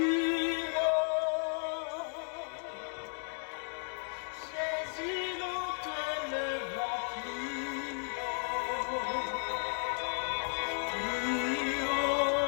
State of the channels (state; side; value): silent; right; 55 dB below the other